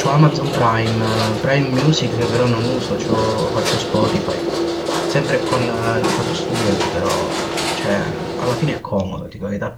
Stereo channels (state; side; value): identical; both; correlation 1.00